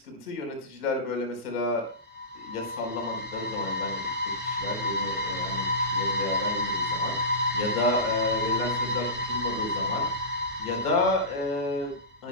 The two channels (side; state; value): both; normal; correlation -0.20